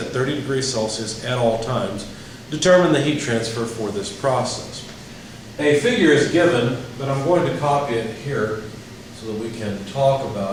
30 degrees Celsius at all times. Determine the heat transfer for this process. A figure is given, but I'm going to copy it here so that we can talk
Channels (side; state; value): both; identical; correlation 1.00